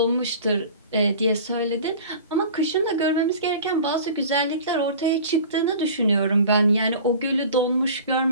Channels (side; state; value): both; inverted; correlation -0.41